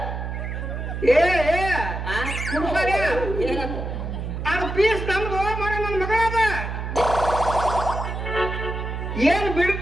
ಏನಂತ ಅದು ಪೀಸ್ ನಮ್ದು ಮಗ ನನ್ನ ಮಗಳದ ಏನ್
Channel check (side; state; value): right; noise; hum, 5 dB below the sound